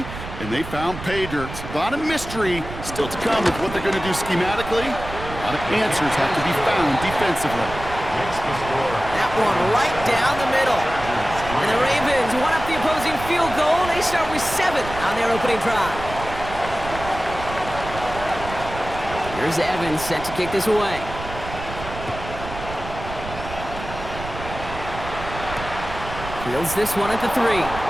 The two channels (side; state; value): right; noise; rumble, 10 dB below the sound